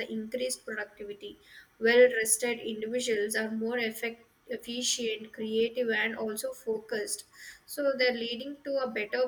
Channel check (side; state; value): both; identical; correlation 1.00